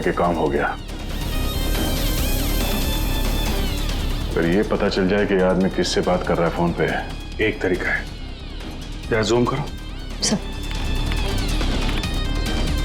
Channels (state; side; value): identical; both; correlation 1.00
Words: कि काम हो गया। फिर ये पता चल जाए कि आदमी किससे बात कर रहा है फोन पे। एक तरीका है, जरा जूम करो। सर